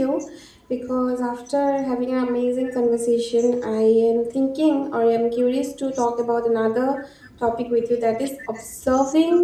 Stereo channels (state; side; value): identical; both; correlation 1.00